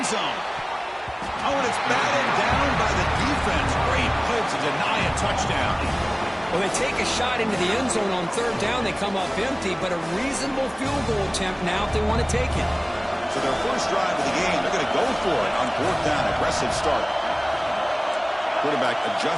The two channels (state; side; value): identical; both; correlation 1.00